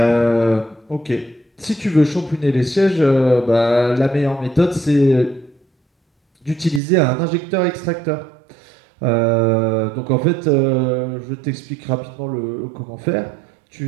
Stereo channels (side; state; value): left; drops out; at 6.8 s